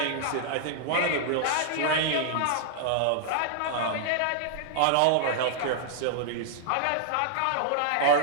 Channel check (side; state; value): both; different; correlation -0.01